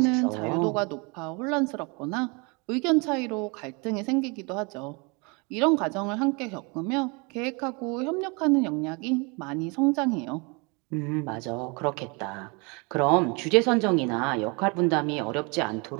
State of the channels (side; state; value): left; quieter; 30.2 dB